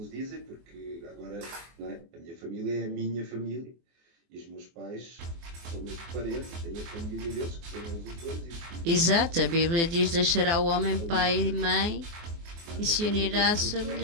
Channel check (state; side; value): late; left; 24 ms